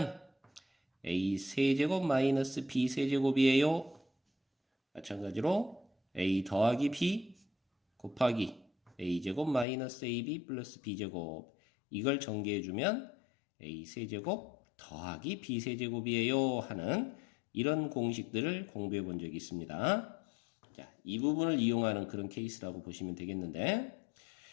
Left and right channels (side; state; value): right; drops out; at 9.7 s